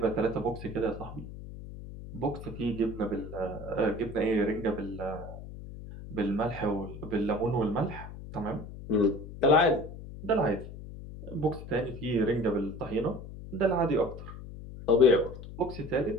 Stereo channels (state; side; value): noise; left; hum, 12 dB below the sound